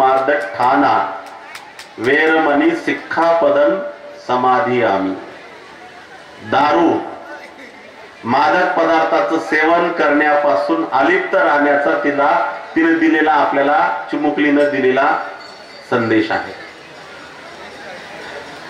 ठाना वेरमणी सिक्खापदन समाधी आम्ही। दारू, मादक पदार्थाचं सेवन करण्यापासून अलिप्त राहण्याचा तिने दिलेला, आपल्याला चिमुकलीनं दिलेला संदेश आहे।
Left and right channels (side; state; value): both; identical; correlation 1.00